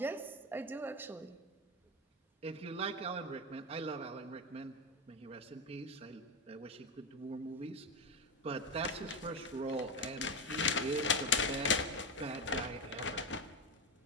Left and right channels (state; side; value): normal; both; correlation 0.14